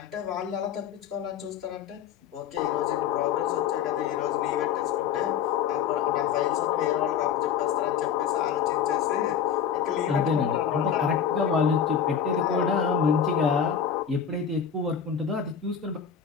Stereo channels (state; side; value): quieter; right; 8.0 dB